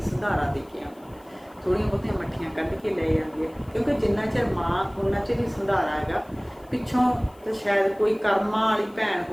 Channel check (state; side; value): noise; left; hiss, 30 dB below the sound